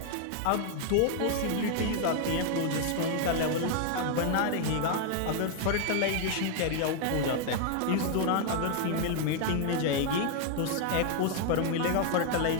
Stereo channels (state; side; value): different; both; correlation 0.00